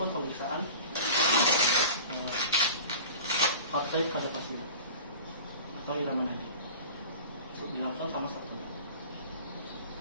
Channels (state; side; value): inverted; both; correlation -0.39